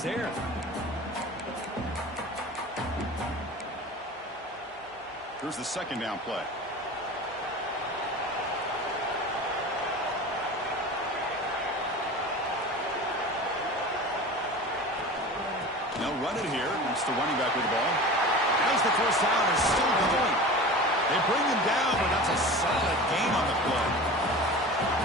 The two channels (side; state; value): both; normal; correlation 0.35